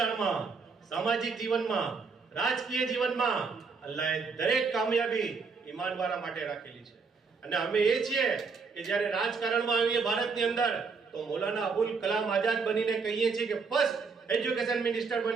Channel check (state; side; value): quieter; left; 5.0 dB